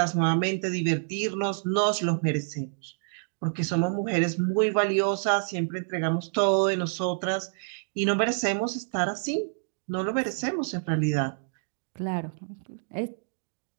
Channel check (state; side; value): silent; left; digital silence